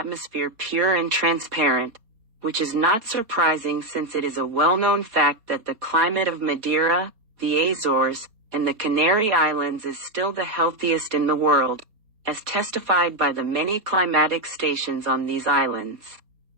pure and transparent, which is not surprising since it is a well-known fact that the climate of Madeira, the Azores, and the Canary Islands is still the healthiest in the world, as testified by the many climatic stations on these islands.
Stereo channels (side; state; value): left; late; 4.2 ms